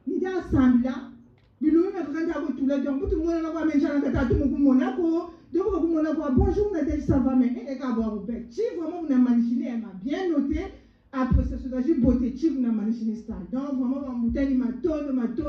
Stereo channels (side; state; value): both; identical; correlation 1.00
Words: Nous avons assemblé là, nous avons tout là, donc tout le monde a même changé de tout le monde Monaco. Donc, bonjour, Nadège, ça va, mais elle est à boire au bec. Si vraiment vous avez manichiné, elle m'a bien noté. Après, c'est ce que j'ai beauté, si vous avez manichiné ça. Donc, vraiment, ma bouteille, ma